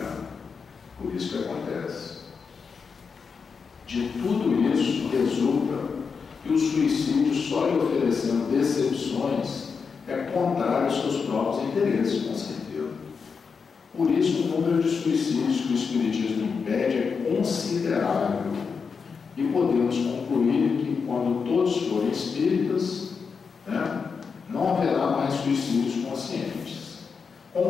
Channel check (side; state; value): right; quieter; 5.6 dB